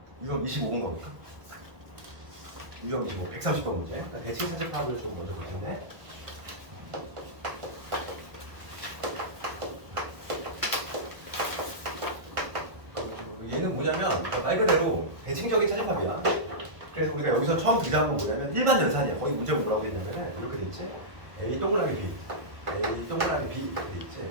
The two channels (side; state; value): left; late; 1.3 ms